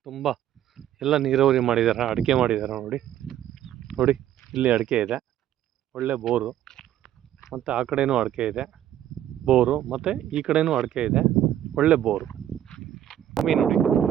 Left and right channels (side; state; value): left; quieter; 11.4 dB